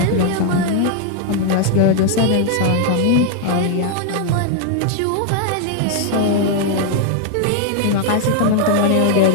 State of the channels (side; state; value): both; different; correlation 0.00